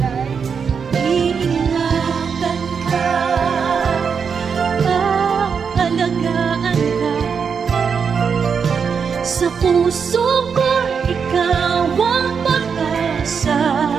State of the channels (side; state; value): left; quieter; 6.3 dB